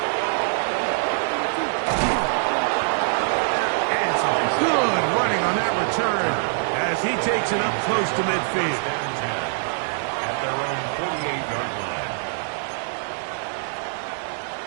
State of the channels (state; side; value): silent; left; digital silence